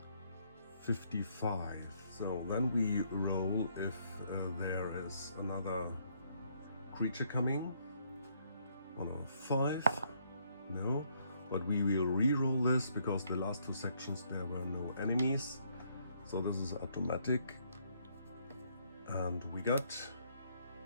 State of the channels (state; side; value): inverted; both; correlation -0.70